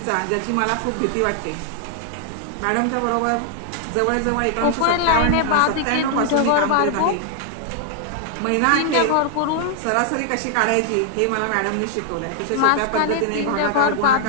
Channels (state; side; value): different; both; correlation 0.00